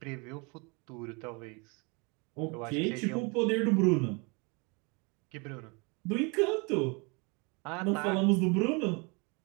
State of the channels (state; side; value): quieter; left; 30.5 dB